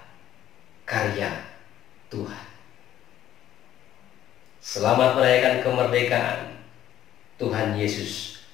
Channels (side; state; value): right; quieter; 12.0 dB